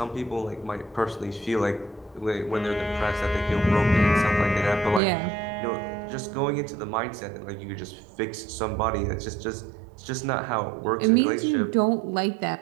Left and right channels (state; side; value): drops out; left; at 5.0 s